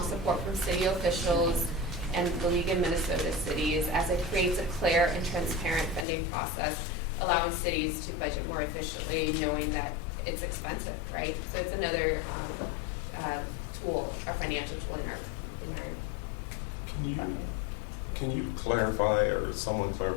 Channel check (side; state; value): right; drops out; at 6.1 s